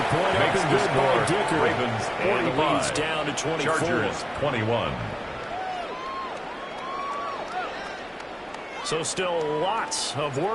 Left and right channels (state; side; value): identical; both; correlation 1.00